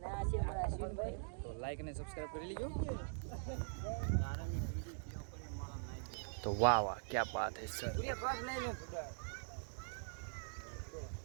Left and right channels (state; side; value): silent; left; digital silence